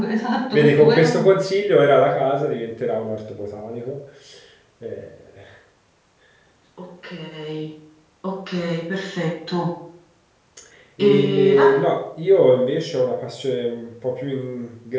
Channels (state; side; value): identical; both; correlation 1.00